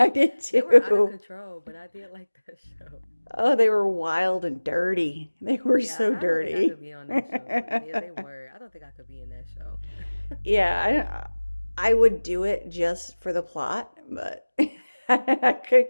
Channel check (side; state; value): both; inverted; correlation -1.00